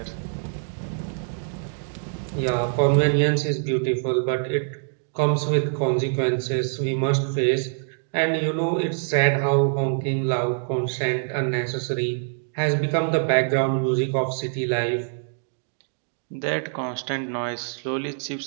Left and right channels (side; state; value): left; silent; digital silence